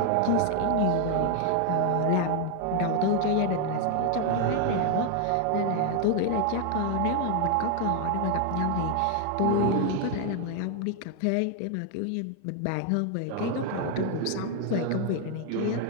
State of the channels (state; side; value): different; both; correlation 0.00